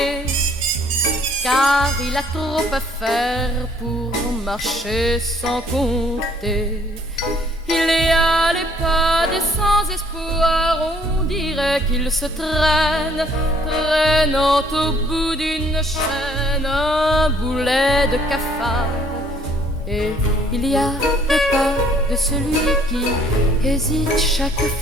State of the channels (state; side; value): normal; both; correlation 0.61